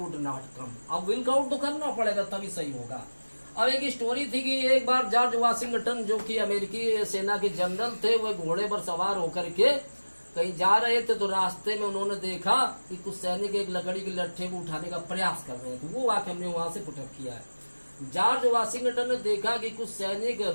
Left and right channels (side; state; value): both; inverted; correlation -1.00